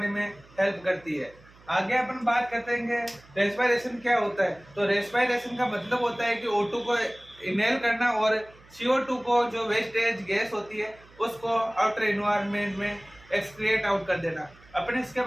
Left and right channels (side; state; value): right; noise; hum, 26 dB below the sound